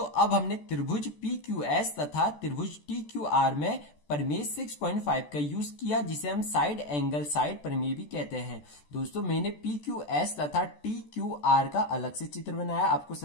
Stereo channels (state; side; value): late; right; 14 ms